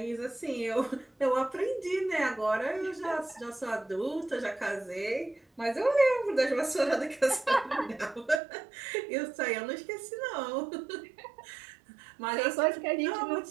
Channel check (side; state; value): left; drops out; at 8.4 s